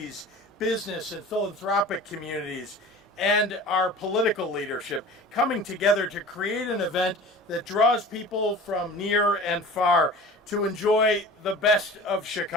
business and philanthropic communities and our political leadership coming together to create an event that draws people from near and far to enjoy the best of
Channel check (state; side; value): normal; both; correlation 0.40